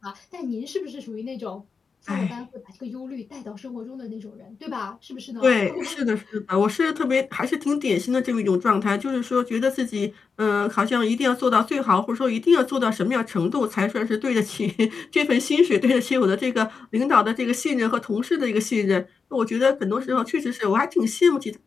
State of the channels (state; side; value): quieter; right; 5.2 dB